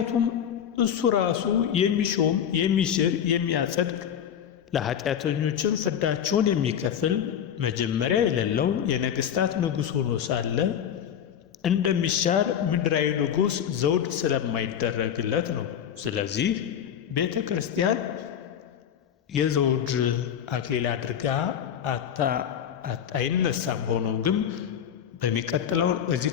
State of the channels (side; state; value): right; quieter; 9.0 dB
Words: እሱ ራሱ የሚሾም የሚሽር የሚያጸድቅ ለኃጢአተኞችም ፍዳቸውን የሚከፍል መጀመሪያ የሌለው የነገሥታት ንጉሥ ሆኖ ሳለ እንደሚሻር ምድራዊ ንጉሥ ዘውድ ስለማይደረግለት ነው። ስለዚህ ቤተ ክርስቲያን የዘውድ አክሊል አድርጋ አይነሳም። ሆኖም ግን በዚህ